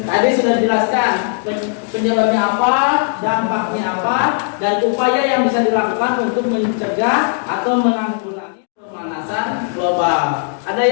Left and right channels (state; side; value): silent; right; 67 dB below the other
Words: Tadi sudah dijelaskan penyebabnya apa, dampaknya apa, dan upaya yang bisa dilakukan untuk mencegah atau menanggulangi pemanasan global. Ada